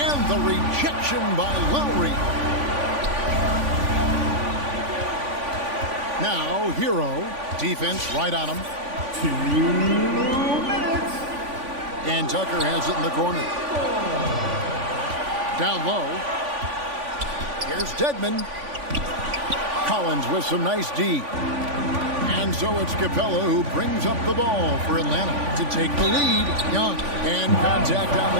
the rejection by Lowry. Now, Hero. Defense right on him. 2 minutes. And Tucker has it in the corner. Down low. Here's Dedmon. Collins with some nice D. And so it's Capella who brings up the ball for Atlanta to take the lead. Young, and contact on the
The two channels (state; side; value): late; left; 3.5 ms